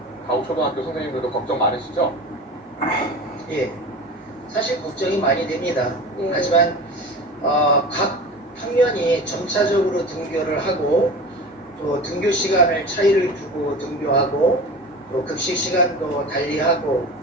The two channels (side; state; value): both; normal; correlation 0.34